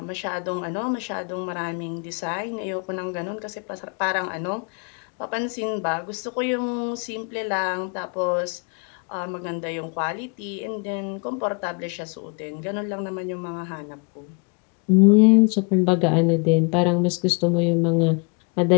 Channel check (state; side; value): quieter; right; 34.0 dB